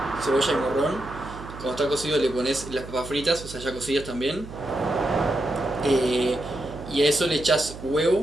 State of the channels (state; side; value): noise; right; hum, 14 dB below the sound